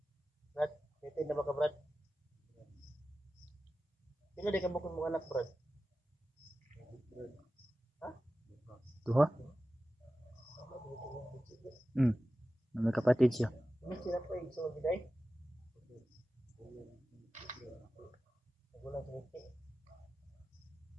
Brad, titin na ba ka Brad? Sino di ka bukong mga anak Brad? Ha? Duha? Na may kapatid siya. Ini sila po yung so biday. Wala siniti.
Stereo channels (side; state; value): both; normal; correlation 0.94